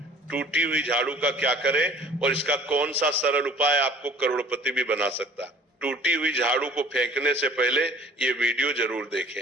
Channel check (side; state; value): both; normal; correlation 0.50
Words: टूटी हुई झाड़ू का क्या करें और इसका कौन सा सरल उपाय आपको करोड़पति भी बना सकता है। टूटी हुई झाड़ू को फेंकने से पहले ये वीडियो जरूर